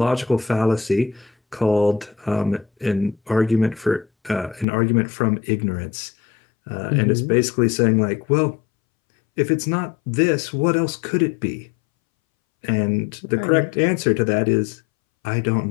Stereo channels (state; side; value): drops out; right; at 4.7 s